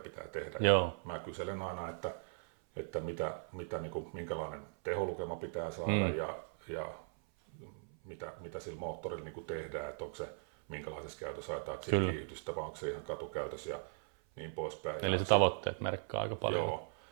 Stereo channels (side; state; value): left; silent; 52 dB below the other